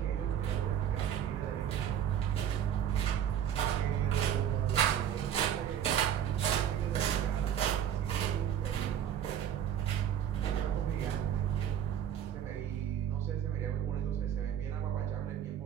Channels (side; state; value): left; quieter; 9.6 dB